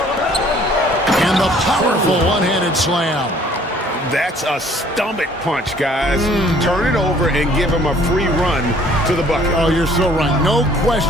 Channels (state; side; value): normal; both; correlation 0.57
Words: And the powerful one-handed slam. That's a stomach punch, guys. Turn it over and give him a free run to the bucket. Oh, you're so right. No